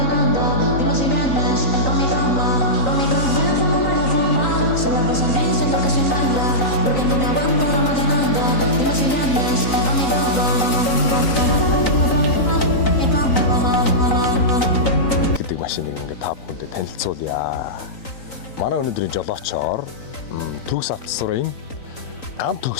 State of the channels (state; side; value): late; right; 3.9 ms